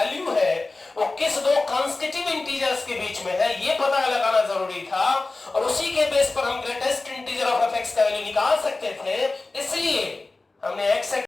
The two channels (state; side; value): quieter; right; 3.3 dB